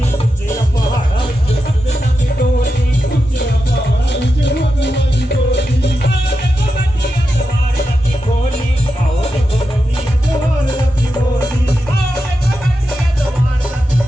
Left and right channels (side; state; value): both; normal; correlation 0.89